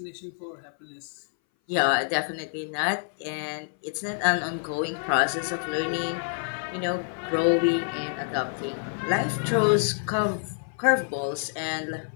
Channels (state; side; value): silent; right; 59 dB below the other